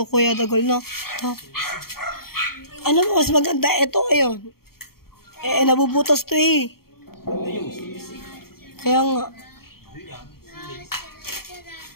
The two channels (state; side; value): late; right; 0.94 ms